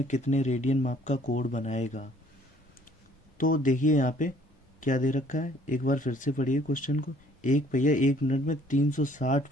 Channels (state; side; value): normal; both; correlation 0.59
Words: कितने रेडियन माप का कोण बनाएगा। तो देखिए यहाँ पे क्या दे रखा है, एक बार फिर से पढ़िए क्वेश्चन को। एक पहिया 1 मिनट में 360